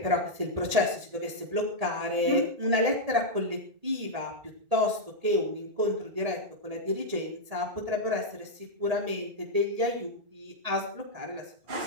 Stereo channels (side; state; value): left; late; 1.8 ms